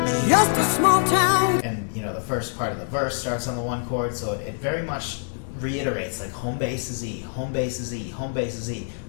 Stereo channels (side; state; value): right; silent; digital silence